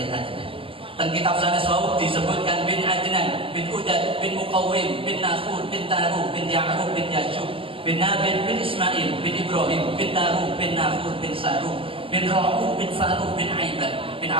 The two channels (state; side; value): late; left; 0.26 ms